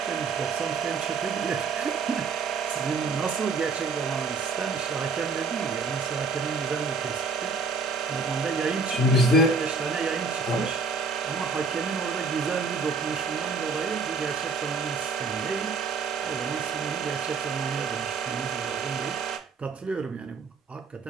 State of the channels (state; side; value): quieter; left; 4.3 dB